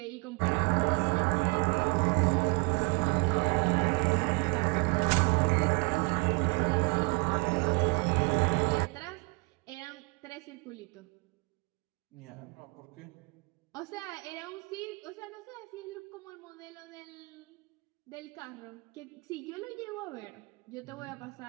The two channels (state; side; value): quieter; left; 32.2 dB